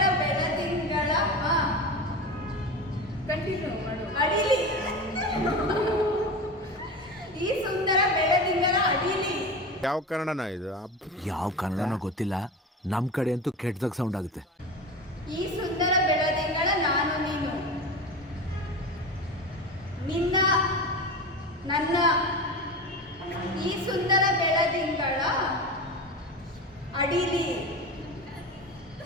ಬೆಳದಿಂಗಳ ಕಂಟಿನ್ಯೂ ಮಾಡು. ಅಡಿಲಿ ಈ ಸುಂದರ ಬೆಳದಿಂಗಳ ಅಡಿಲಿ ಯಾವ ಕನ್ನಡನ ಇದು? ಯಾವ ಕನ್ನಡನೋ ಗೊತ್ತಿಲ್ಲ, ನಮ್ಮ ಕಡೆ ಅಂತೂ ಕೆಟ್ಟದಾಗ ಸೌಂಡ್ ಆಗುತ್ತೆ. ಈ ಸುಂದರ ಬೆಳದಿಂಗಳ ನಾನು ನೀನು ನಿನ್ನ ನನ್ನ ಈ ಸುಂದರ ಬೆಳದಿಂಗಳ ಅಡಿಲಿ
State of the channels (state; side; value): normal; both; correlation 0.26